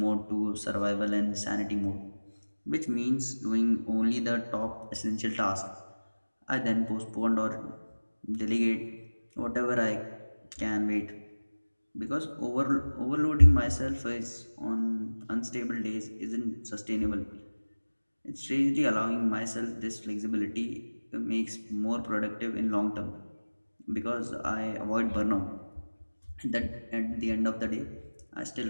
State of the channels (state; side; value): inverted; both; correlation -1.00